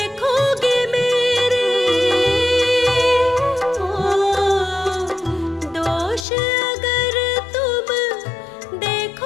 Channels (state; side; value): drops out; right; at 6.2 s